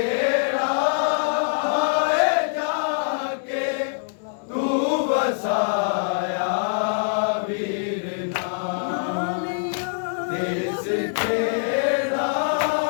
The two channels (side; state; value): right; silent; 63 dB below the other